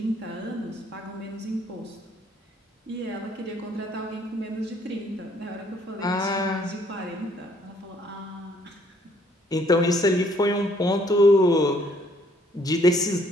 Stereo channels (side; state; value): both; normal; correlation 0.64